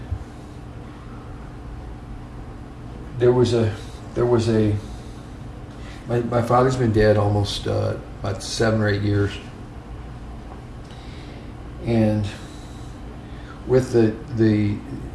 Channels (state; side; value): identical; both; correlation 1.00